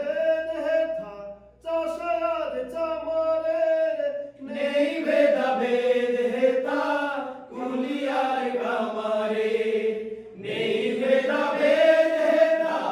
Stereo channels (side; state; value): both; identical; correlation 1.00